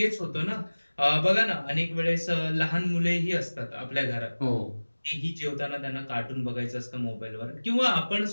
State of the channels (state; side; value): inverted; both; correlation -1.00